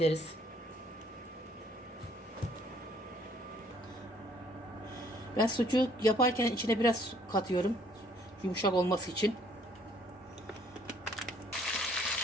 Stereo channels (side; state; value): both; normal; correlation 0.63